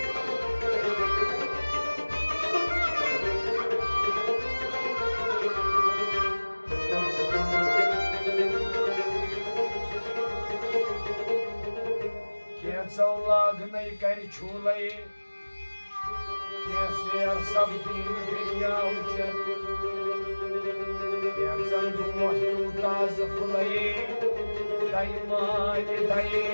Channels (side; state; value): both; inverted; correlation -1.00